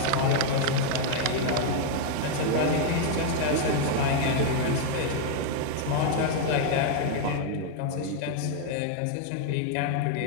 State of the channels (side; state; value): both; different; correlation 0.00